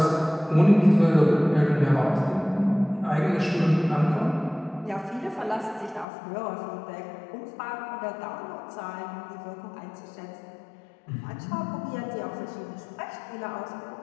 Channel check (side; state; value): right; drops out; at 6.1 s